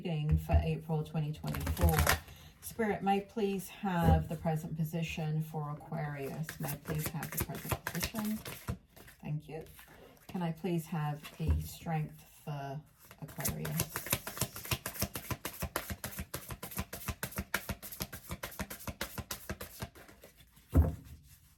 for April 2024. Spirit, may please have the present position for Aquarius. May I please have the present position? Thank you. Can I please have the strength for Aquarius?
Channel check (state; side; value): identical; both; correlation 1.00